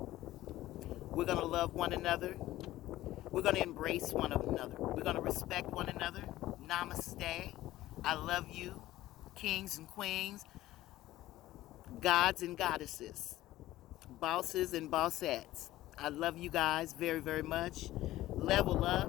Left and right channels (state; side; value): quieter; right; 15.6 dB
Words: We're going to love one another. We're going to embrace one another. We're going to respect one another. Namaste. I love you, kings and queens, gods and goddesses, bosses and bossettes. I love you guys very, very much. Level